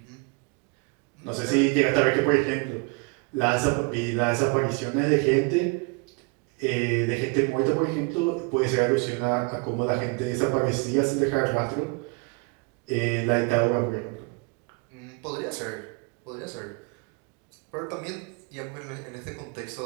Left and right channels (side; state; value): left; quieter; 31.1 dB